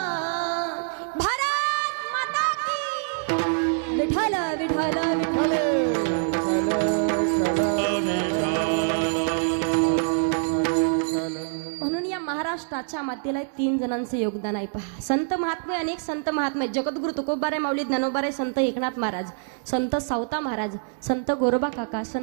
भारत माता की. विठ्ठल विठ्ठल विठ्ठल. म्हणून या महाराष्ट्राच्या मातेला 3 जणांचे योगदान आहे पहा. संत महात्मे, अनेक संत महात्मे, जगद्गुरु तुकोबाराय माऊली ज्ञानोबाराय, संत एकनाथ महाराज, संत सावता महाराज, संत गोरोबा काका,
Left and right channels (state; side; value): silent; left; digital silence